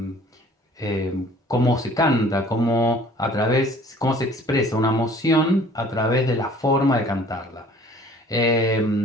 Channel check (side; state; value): both; normal; correlation 0.52